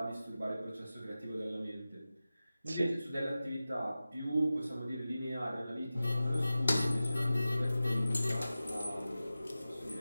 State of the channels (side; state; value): both; inverted; correlation -0.95